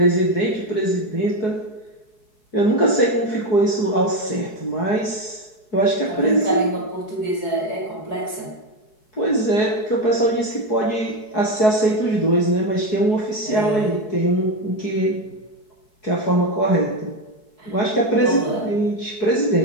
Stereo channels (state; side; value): late; right; 4.7 ms